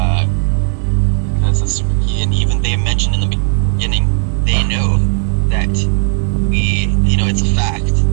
because it's super key, and even they mentioned in the beginning, they know that it's a fact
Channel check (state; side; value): silent; left; digital silence